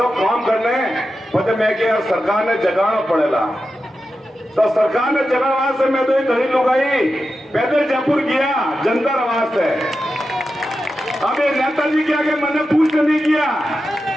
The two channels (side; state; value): both; normal; correlation 0.90